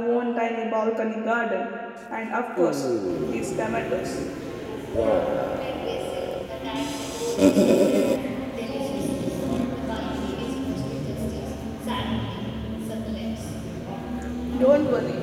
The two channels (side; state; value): both; identical; correlation 1.00